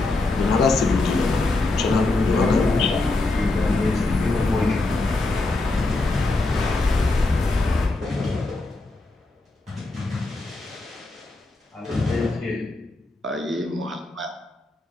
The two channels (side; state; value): right; quieter; 3.1 dB